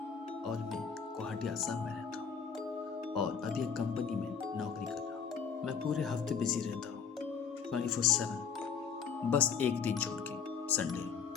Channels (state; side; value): quieter; right; 6.5 dB